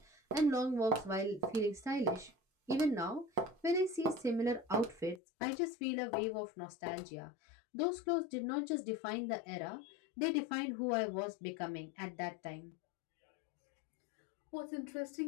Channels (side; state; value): right; drops out; at 5.2 s